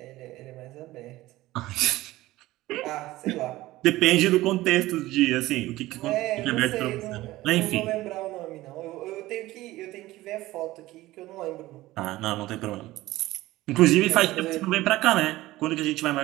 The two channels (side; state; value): left; quieter; 17.4 dB